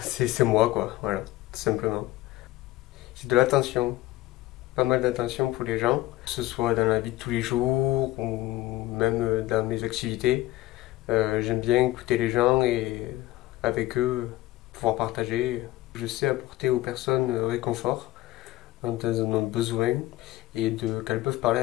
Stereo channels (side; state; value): right; quieter; 16.8 dB